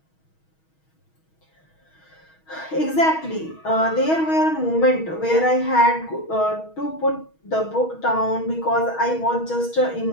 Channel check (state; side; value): late; right; 6.3 ms